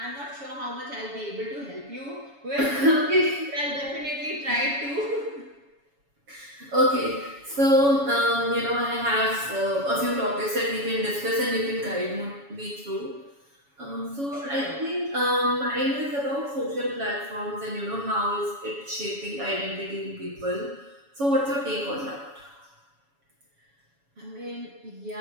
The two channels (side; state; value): left; late; 7.1 ms